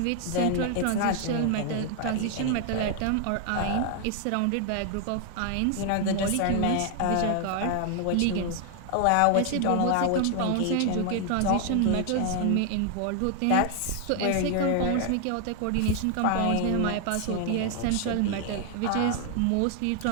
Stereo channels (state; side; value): different; both; correlation 0.00